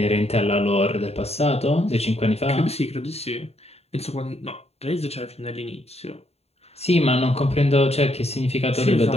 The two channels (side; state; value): right; late; 0.30 ms